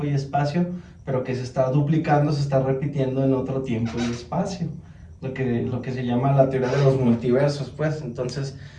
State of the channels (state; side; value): identical; both; correlation 1.00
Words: y espacio, pero que se está duplicando, se está repitiendo en otro tiempo y espacio, lo que se llama la teoría de los multiversos, pues. Entonces